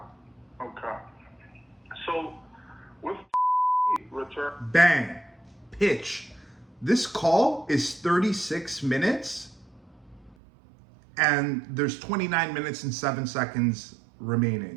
So, with return... Bang. Pitch. This call is 36 minutes and there's 29 minutes and 7 seconds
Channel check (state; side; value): drops out; left; at 10.4 s